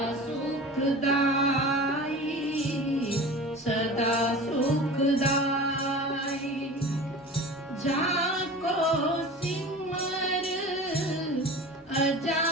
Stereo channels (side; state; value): both; normal; correlation 0.36